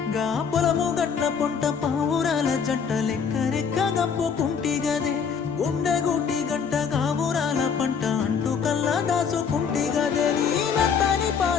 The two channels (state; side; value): quieter; right; 6.5 dB